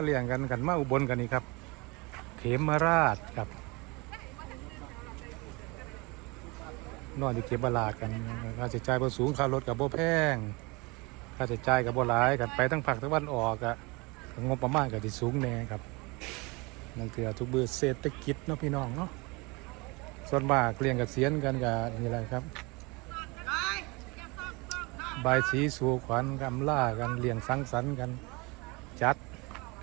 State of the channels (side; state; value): left; quieter; 26.6 dB